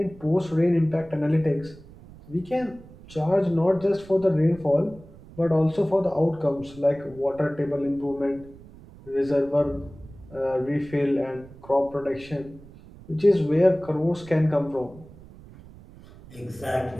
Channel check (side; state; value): right; noise; rumble, 20 dB below the sound